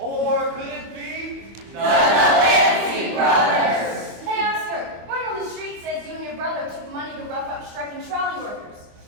could it be? Fancy Brothers! Hey Oscar, word on the street says you and your brother took money to rough up striking trolley workers.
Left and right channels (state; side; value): late; left; 25 ms